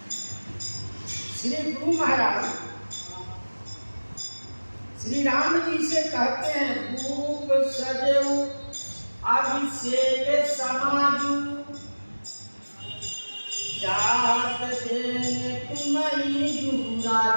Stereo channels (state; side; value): inverted; both; correlation -1.00